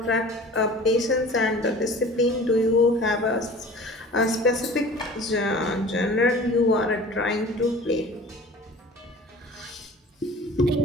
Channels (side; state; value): both; normal; correlation 0.43